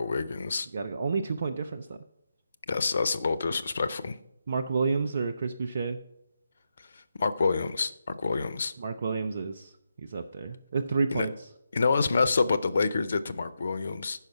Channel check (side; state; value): both; inverted; correlation -0.85